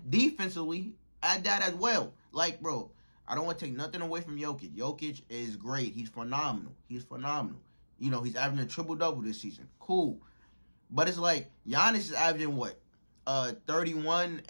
defensively at that as well. Like, bro, I don't want to take nothing away from Jokic. Jokic is great. He's phenomenal. You know, he's averaging a triple-double this season. Cool. But it's like, Giannis is averaging what? 31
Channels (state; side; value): inverted; both; correlation -1.00